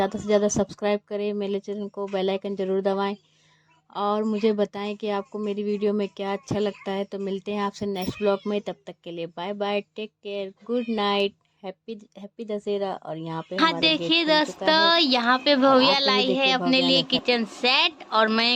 से ज़्यादा सब्सक्राइब करें मेरे चैनल को। बेल आइकन ज़रूर दबाएं और मुझे बताएं कि आपको मेरी वीडियो में क्या अच्छा लगता है। तो मिलते हैं आपसे नेक्स्ट ब्लॉग में, तब तक के लिए bye bye, take care, good night, happy Dussehra. और यहाँ पे हाँ देखिए दोस्तों, यहाँ पे भव्या लाई है अपने लिए किचन सेट और मैं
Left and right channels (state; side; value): identical; both; correlation 1.00